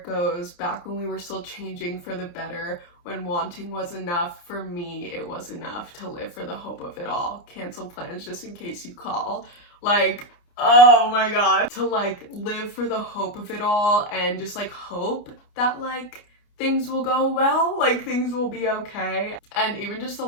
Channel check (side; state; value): right; late; 29 ms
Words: goes, "Back when we were still changing for the better, when wanting was enough, for me it was enough to live for the hope of it all. Cancel plans just in case you call." Like, oh my god. To like live for the hope of it all and just like hope that like things will go well, like things will be okay. And even just the